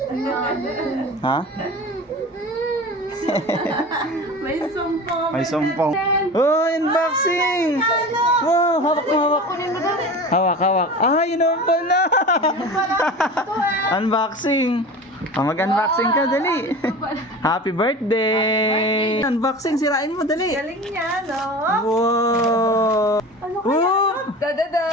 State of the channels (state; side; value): normal; both; correlation 0.34